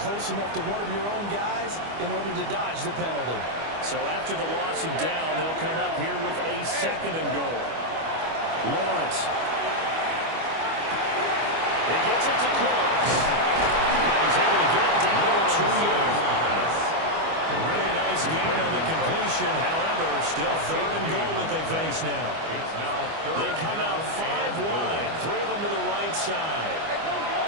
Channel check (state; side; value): late; left; 25 ms